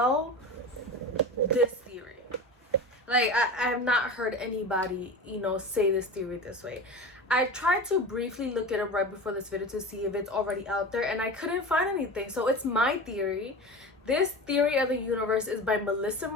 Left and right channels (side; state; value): both; normal; correlation 0.30